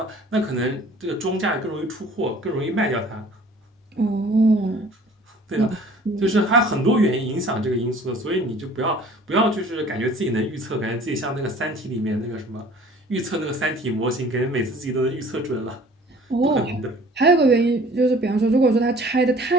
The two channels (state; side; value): normal; both; correlation 0.50